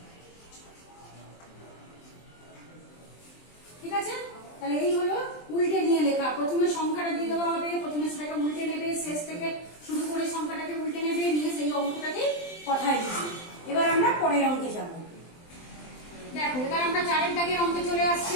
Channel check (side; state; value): right; late; 23 ms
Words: ঠিক আছে, তাহলে এই হলো উল্টে নিয়ে লেখা। প্রথমে সংখ্যাটা দিয়ে দেওয়া হবে, প্রথমে সেটাকে উল্টে নেবে, শেষ থেকে শুরু করে সংখ্যাটাকে উল্টে নেবে, নিয়ে সেই অঙ্কটাকে কথায় লিখবে। এবার আমরা পরের অঙ্কে যাব। দেখো, এবার আমরা 4 দাগের অঙ্কে চলে